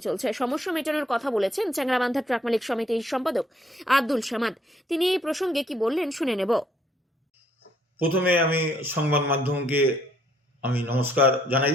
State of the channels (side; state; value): both; normal; correlation 0.67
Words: চলছে। সমস্যা মেটানোর কথা বলেছেন চ্যাংড়াবান্ধা ট্রাক মালিক সমিতির সম্পাদক আব্দুল সামাদ। তিনি এই প্রসঙ্গে কি বললেন শুনে নেব। প্রথমে আমি সংবাদ মাধ্যমকে আমি নমস্কার জানাই,